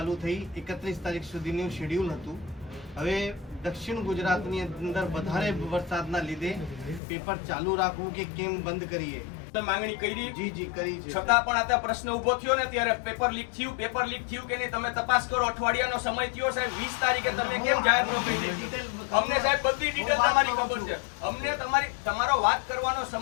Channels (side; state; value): right; drops out; at 7.0 s